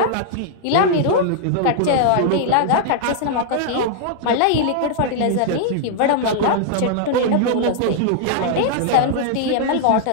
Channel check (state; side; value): different; both; correlation -0.01